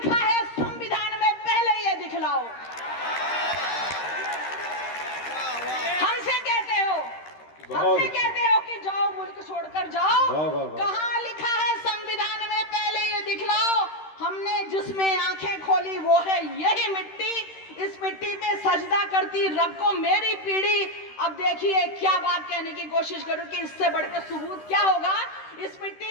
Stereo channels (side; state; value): right; late; 13 ms